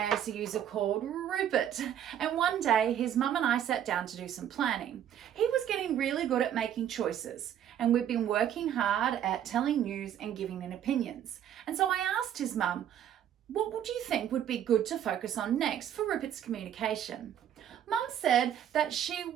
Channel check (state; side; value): quieter; left; 10.2 dB